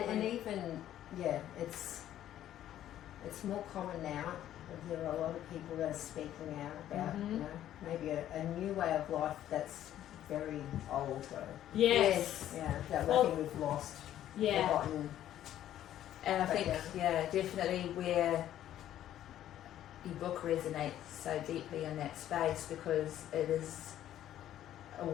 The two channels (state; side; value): quieter; right; 12.0 dB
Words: even it's more common now. There are a lot of people that are speaking out about maybe a new way of life that's very old though. Yes. Yeah, that Well, I think we've lost. Yeah. Forgotten. and I But think, definitely where your book resonates so deeply in that space because it is